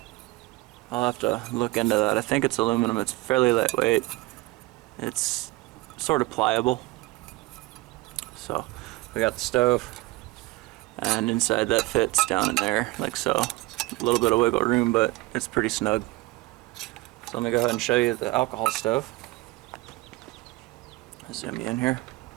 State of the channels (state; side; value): quieter; left; 20.6 dB